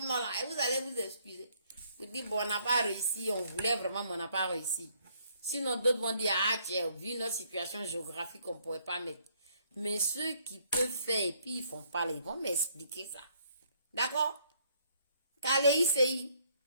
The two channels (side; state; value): both; inverted; correlation -0.67